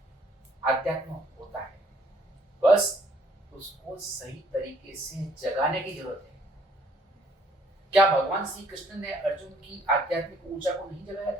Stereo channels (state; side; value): normal; both; correlation 0.62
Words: आध्यात्म होता है, बस उसको सही तरीके से जगाने की जरूरत है। क्या भगवान श्री कृष्ण ने अर्जुन की आध्यात्मिक ऊर्जा को नहीं जगाया